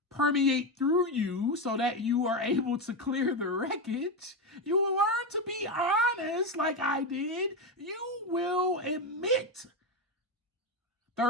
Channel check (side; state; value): both; normal; correlation 0.12